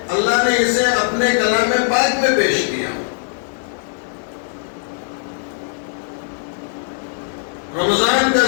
اللہ نے اسے اپنے کلام پاک میں پیش کیا۔ رمضان کا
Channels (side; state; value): right; silent; digital silence